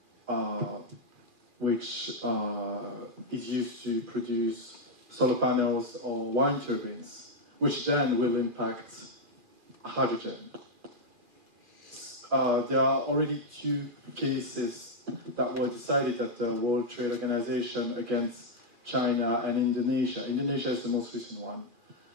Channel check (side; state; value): left; late; 2.4 ms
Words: which is used to produce solar panels or wind turbines, which then will impact hydrogen. There are already 2 cases that were decided at the World Trade Organization against China and Indonesia. Indonesia is the most recent one.